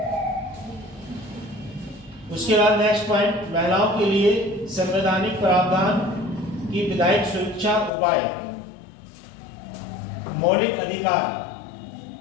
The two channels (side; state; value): right; drops out; at 7.9 s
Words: उसके बाद नेक्स्ट पॉइंट, महिलाओं के लिए संवैधानिक प्रावधान की विधायक सुरक्षा उपाय। मौलिक अधिकार,